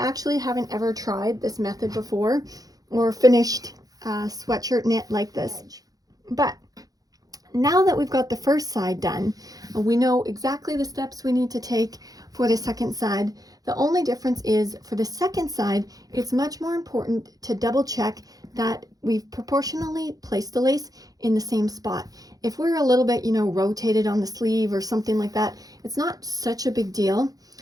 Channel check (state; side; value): late; left; 0.18 ms